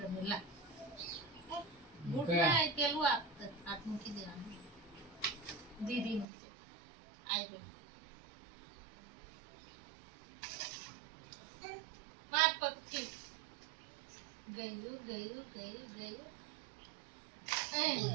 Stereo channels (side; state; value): left; drops out; at 6.2 s